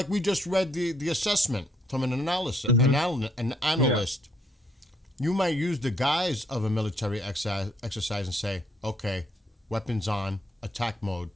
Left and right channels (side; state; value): both; normal; correlation 0.70